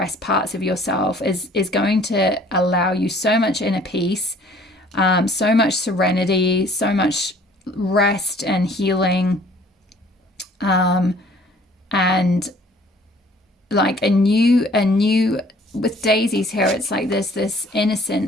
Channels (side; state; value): both; normal; correlation 0.55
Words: parts of yourself is going to allow you so much inner peace, so much serenity, so much rest and healing, and like a new with daisies here, it's like there's this